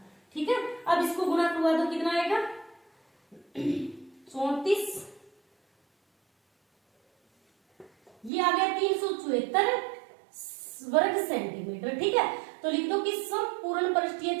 ठीक है, अब इसको गुणा करवा दो, कितना आएगा 34, ये आ गया 374 वर्ग सेंटीमीटर। ठीक है, तो लिख दो कि संपूर्ण पृष्ठीय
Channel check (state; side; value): drops out; left; at 8.3 s